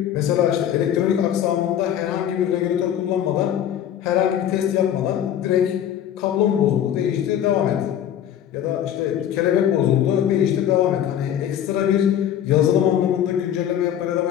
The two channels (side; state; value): right; quieter; 10.2 dB